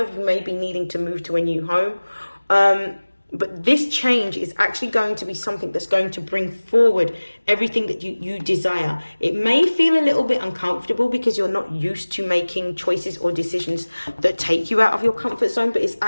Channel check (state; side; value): inverted; both; correlation -1.00